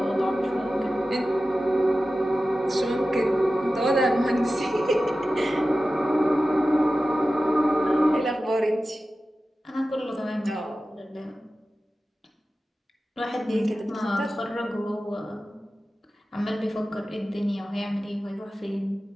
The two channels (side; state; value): both; normal; correlation 0.94